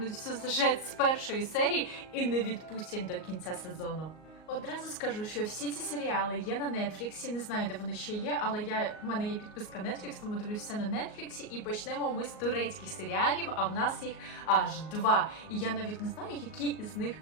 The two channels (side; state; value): right; late; 38 ms